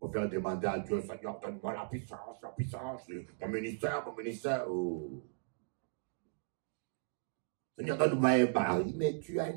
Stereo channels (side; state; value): left; silent; digital silence